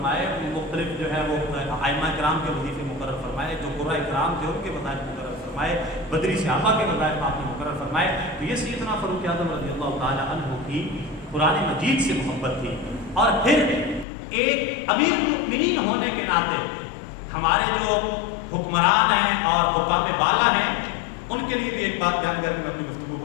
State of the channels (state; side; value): drops out; right; at 14.1 s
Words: مختلف جو ہے وہ ائمہ کرام کے وظیفے مقرر فرمائے، جو قرۂ کرام تھے ان کے وظائف مقرر فرمائے، بدری صحابہ کے وظائف آپ نے مقرر فرمائے۔ تو یہ سیدنا فاروق اعظم رضی اللہ تعالیٰ عنہ کی قرآن مجید سے محبت تھی۔ اور پھر ایک امیر المؤمنین ہونے کے ناطے ہمارے جو حکمران ہیں اور حکام بالا ہیں ان کے لیے بھی ایک بات بیان کر کے میں اپنی گفتگو